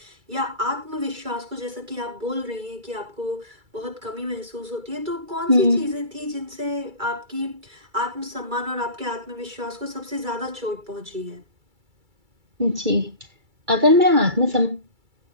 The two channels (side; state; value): left; late; 2.3 ms